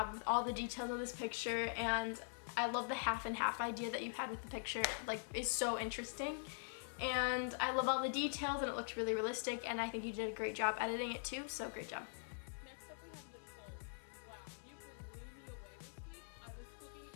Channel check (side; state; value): right; silent; digital silence